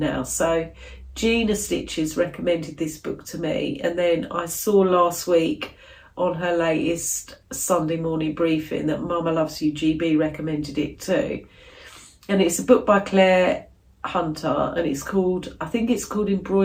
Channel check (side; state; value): both; identical; correlation 1.00